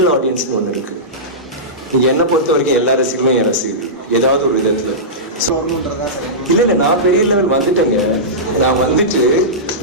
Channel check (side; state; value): both; normal; correlation -0.16